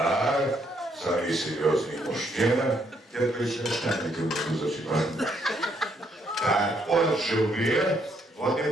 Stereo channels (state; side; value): normal; both; correlation 0.72